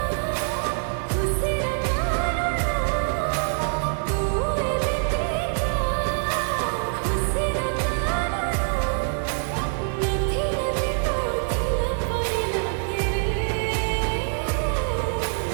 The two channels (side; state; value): left; silent; 62 dB below the other